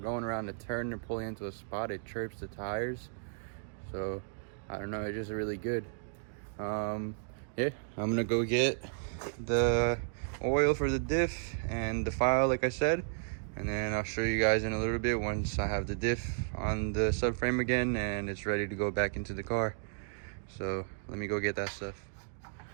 going around the turn and pulling into a spot, it chirps the tires. So I don't know, it's just really good. Yeah, I'm gonna go get the oil for the diff and the file, like I said, and then I'll show you guys in a little bit once I have the diff on the subframe again and it's ready to go back into the car. So let me go get that stuff.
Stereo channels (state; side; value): silent; left; digital silence